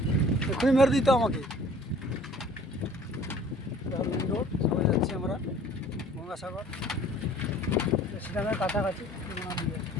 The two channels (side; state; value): both; normal; correlation 0.51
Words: এক্ষুনি মেরে দিত আমাকে। মেন রোড সবাই যাচ্ছি আমরা গঙ্গাসাগর, সেখানে কাছাকাছি।